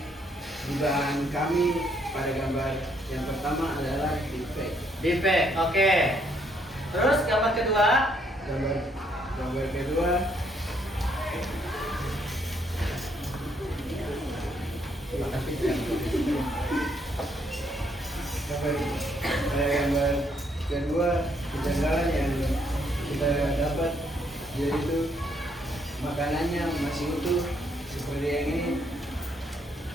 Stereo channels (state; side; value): normal; both; correlation 0.71